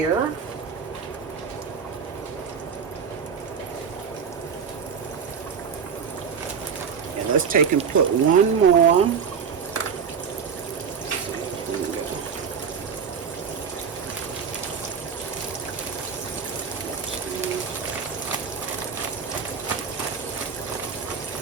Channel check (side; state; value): left; quieter; 6.5 dB